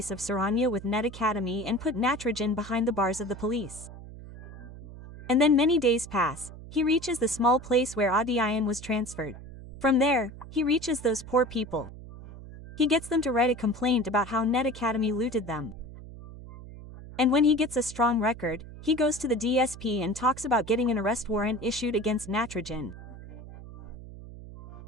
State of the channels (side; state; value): right; noise; hum, 15 dB below the sound